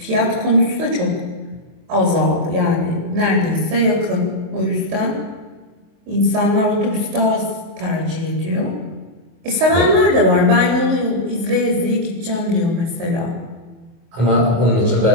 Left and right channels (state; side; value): late; left; 24 ms